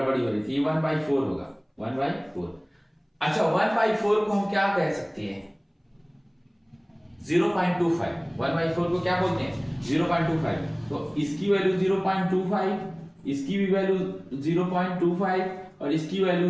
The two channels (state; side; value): identical; both; correlation 1.00